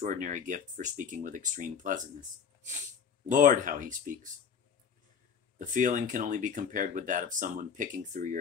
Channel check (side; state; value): right; quieter; 7.0 dB